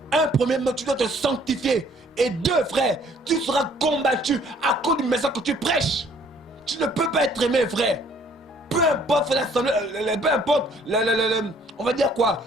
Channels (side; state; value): both; normal; correlation 0.60